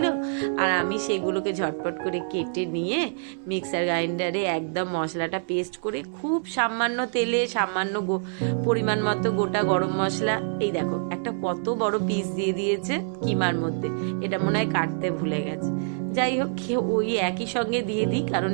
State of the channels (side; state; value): left; silent; 61 dB below the other